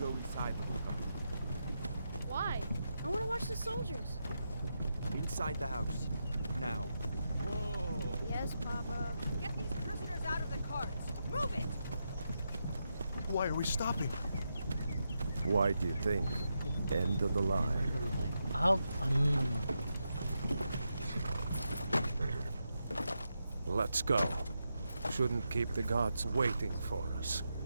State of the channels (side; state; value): both; inverted; correlation -0.85